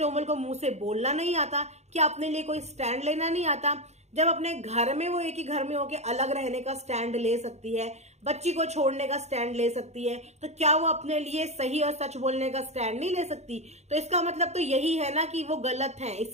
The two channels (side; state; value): left; late; 0.32 ms